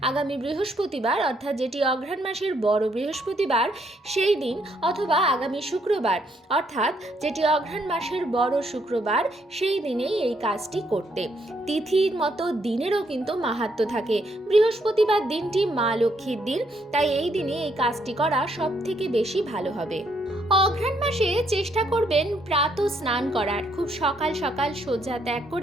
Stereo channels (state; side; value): normal; both; correlation 0.72